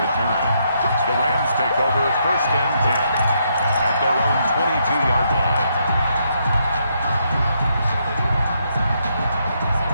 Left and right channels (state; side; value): inverted; both; correlation -0.76